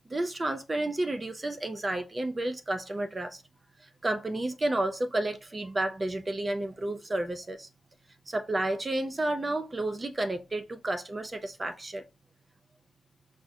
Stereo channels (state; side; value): normal; both; correlation 0.95